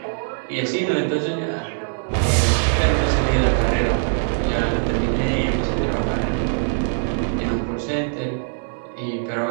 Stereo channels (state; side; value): silent; left; digital silence